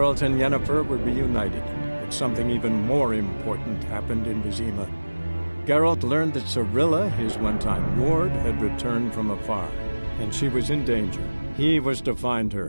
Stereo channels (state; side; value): inverted; both; correlation -1.00